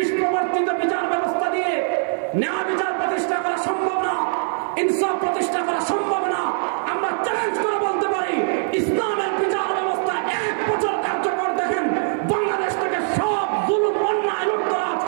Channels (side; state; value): left; silent; 64 dB below the other